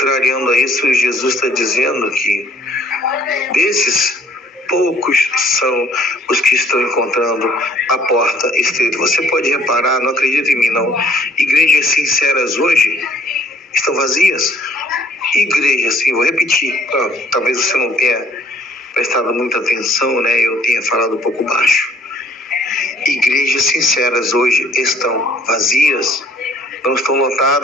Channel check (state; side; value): normal; both; correlation 0.60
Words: a isso, Jesus está dizendo que desses poucos são os que estão encontrando a porta estreita. Você pode reparar, não acredita em mim não, igrejas sinceras hoje estão vazias. Igrejas, sim, vou repetir, talvez você não tenha prestado muita atenção, né? Eu tenha falado um pouco baixo. Igrejas sinceras hoje estão vazias, não estão